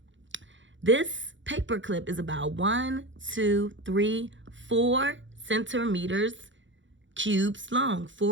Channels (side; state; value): left; late; 0.55 ms